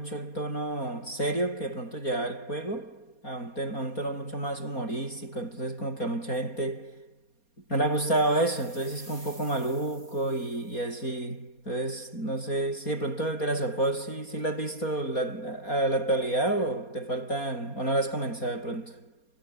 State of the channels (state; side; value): late; right; 4.3 ms